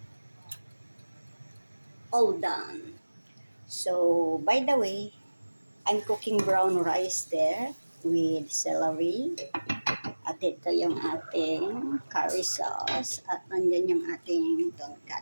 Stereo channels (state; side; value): inverted; both; correlation -1.00